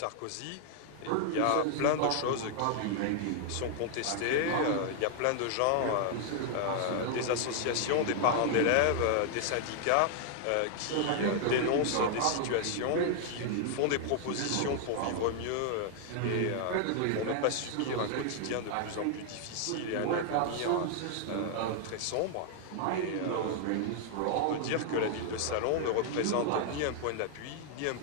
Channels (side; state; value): both; different; correlation 0.00